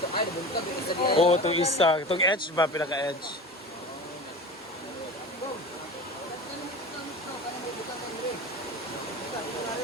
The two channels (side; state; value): both; normal; correlation 0.33